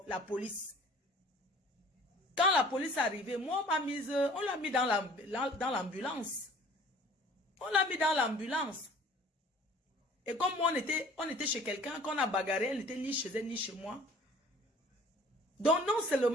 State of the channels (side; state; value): both; normal; correlation 0.50